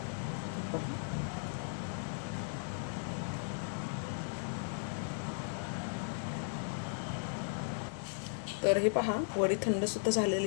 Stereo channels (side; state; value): right; silent; digital silence